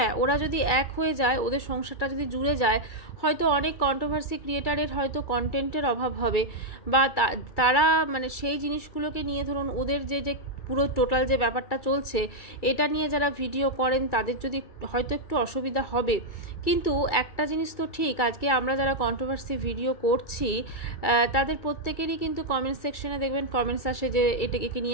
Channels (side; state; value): right; late; 2.3 ms